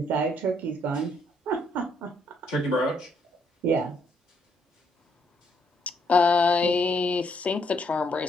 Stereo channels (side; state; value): both; normal; correlation 0.71